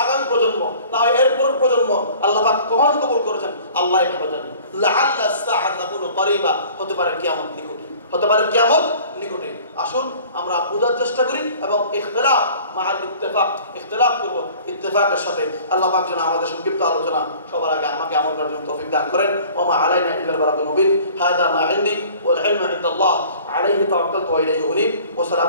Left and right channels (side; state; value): both; inverted; correlation -0.48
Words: আগামী প্রজন্ম, না হয় এরপর প্রজন্ম, আল্লাহ পাক কখন কবুল করেছেন আল্লাহই ভালো জানেন। লাআল্লা সাআত তাকুনু করিবা, হতে পারে কিয়ামত নিকটে, হতে পারে কিয়ামত নিকটে। আসুন আমরা বোঝার চেষ্টা করি এবং ইখতিলাফ মাআল ইত্তেফাক, ইখতিলাফ করব ইত্তেফাকের সাথে। আল্লাহ পাক যেন আমাদের সংক্ষিপ্ত আলোচনা সবার আগে আমাকে আমল করার জন্য তৌফিক দান করেন। ওয়া মা আলাইনা ইল্লাল বালাগুল মুবিন। হাযা মা ইনদি ওয়াল ইলমু ইনদাল্লাহ, আলাইহি তাওয়াক্কালতু ওয়া ইলাইহি উনীব। ওয়া